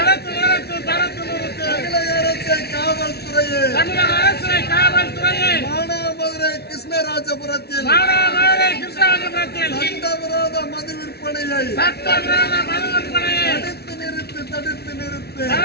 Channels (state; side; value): late; right; 0.47 ms